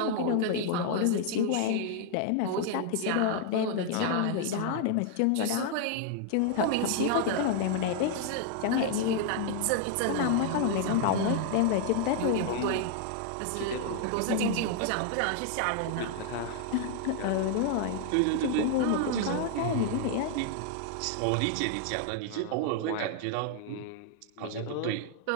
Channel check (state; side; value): different; both; correlation 0.00